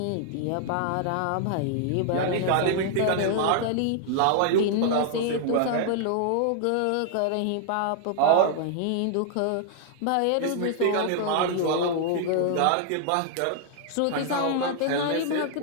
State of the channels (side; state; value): both; different; correlation -0.01